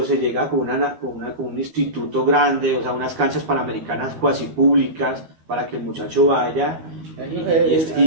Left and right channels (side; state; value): left; late; 12 ms